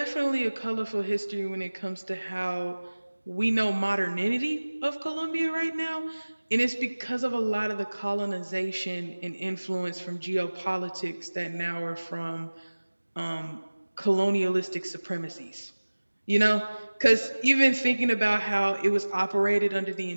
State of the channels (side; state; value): both; inverted; correlation -1.00